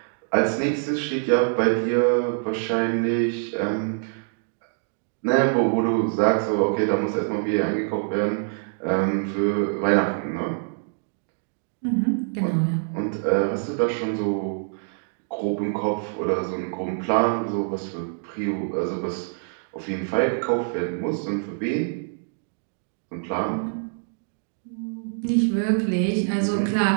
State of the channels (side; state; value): left; silent; digital silence